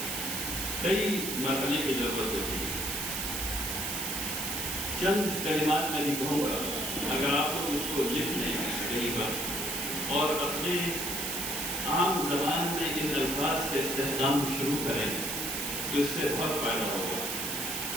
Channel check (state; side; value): noise; right; hiss, 2 dB below the sound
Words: کئی مرحلے کی ضرورت ہوتی ہے. چند کلمات میں بھی کہوں گا، اگر آپ لوگ اس کو لکھ لیں کہیں پر اور اپنے عام زبان میں ان الفاظ کے استخدام شروع کریں تو اس سے بہت فائدہ ہوگا.